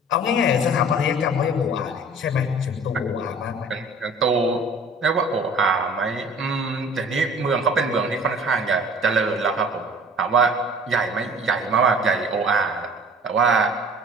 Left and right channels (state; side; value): normal; both; correlation 0.47